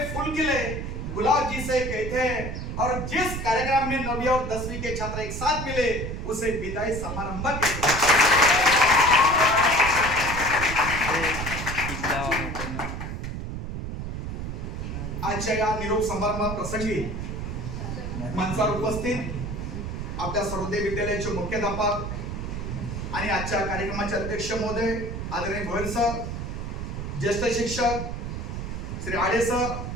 फूल खिले गुलाब जिसे कहते हैं, और जिस कार्यक्रम में 9वीं और 10वीं के छात्र एक साथ मिले उसे विदाई समारंभ कहते हैं. आजच्या या निरोप समारंभ प्रसंगी मंचावर उपस्थित आपल्या सर्वोदय विद्यालयाचे मुख्याध्यापक आणि आजच्या कार्यक्रमाचे अध्यक्ष महोदय आदरणीय गोयल सर, ज्येष्ठ शिक्षक श्री आडे सर,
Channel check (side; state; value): right; noise; rumble, 5 dB below the sound